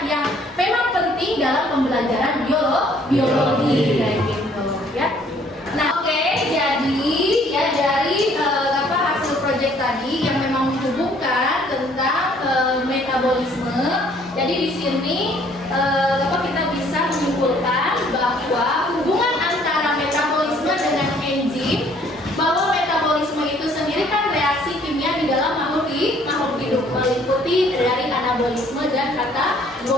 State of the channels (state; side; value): normal; both; correlation 0.61